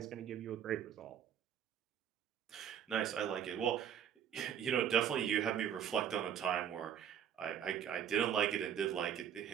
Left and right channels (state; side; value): quieter; left; 9.1 dB